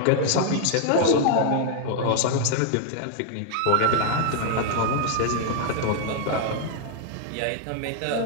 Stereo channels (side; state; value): both; different; correlation 0.00